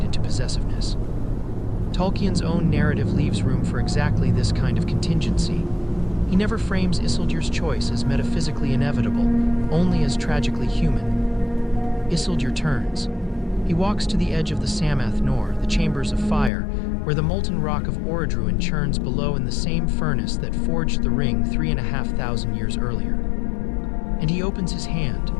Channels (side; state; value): right; drops out; at 16.5 s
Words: into possessiveness. Tolkien's own narrative leaves room for exactly this kind of contingency. He never frames Isildur's choice as metaphysically inevitable, only as tragically human. Isildur turns. He walks to the edge of the Samath Nor, the chambers of fire, where the molten rock of Orodruin churns below in the same furnace that forged the ring 3,500 years earlier. And he opens his hand.